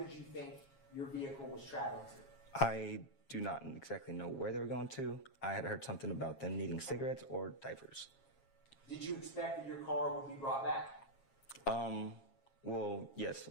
did you think your vehicle was traveling to? I do not exactly know where they were going to. I had heard something about them needing cigarettes or diapers. Did you expect that your car would be brought back? Well, yes.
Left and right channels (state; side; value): late; right; 7.4 ms